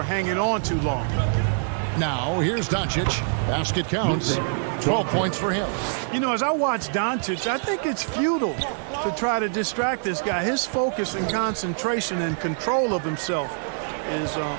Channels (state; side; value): silent; left; 62 dB below the other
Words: hanging on too long. Now, here's Doncic. Basket counts. 12 points for him. You know, as I watch Doncic, I think it's futile to try to distract this guy. His focus and concentration and control of himself is